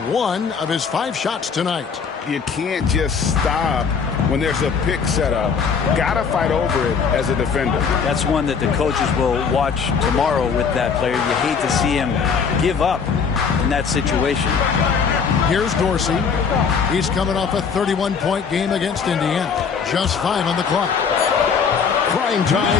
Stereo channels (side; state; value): right; quieter; 6.0 dB